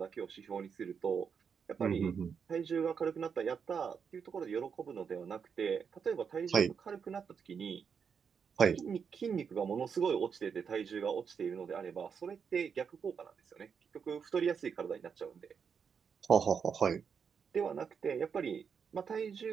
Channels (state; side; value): quieter; left; 6.6 dB